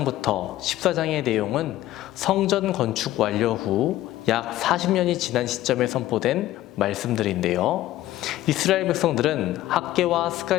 14장의 내용은 성전 건축 완료 후 약 40년이 지난 시점에 선포된 말씀들인데요. 이스라엘 백성들은 학개와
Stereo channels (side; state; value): right; quieter; 14.8 dB